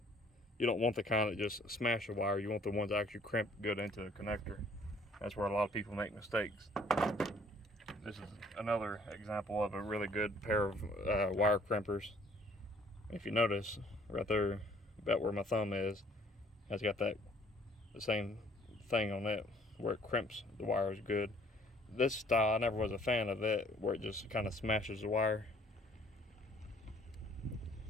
You don't want the kind that just smash the wire. You want the ones that actually crimp good into the connector. That's where a lot of people make mistakes. This is another example of a really good pair of wire crimpers. If you notice, right there, about where my thumb is, has got the same thing on it, where it crimps the wires good. This style, I never was a fan of it, where it just kind of smashes the wire.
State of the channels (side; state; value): both; normal; correlation 0.59